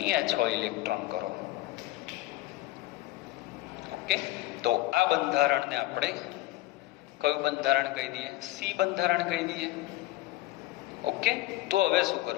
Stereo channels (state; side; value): quieter; right; 17.1 dB